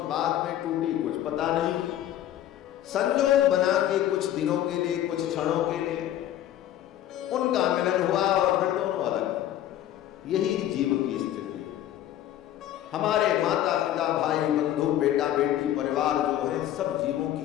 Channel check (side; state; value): right; quieter; 12.2 dB